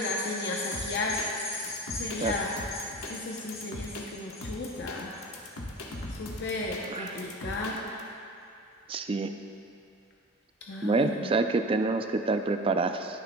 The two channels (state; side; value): normal; both; correlation 0.34